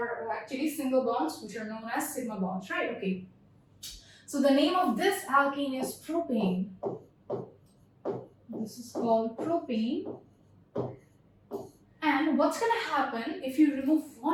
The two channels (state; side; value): identical; both; correlation 1.00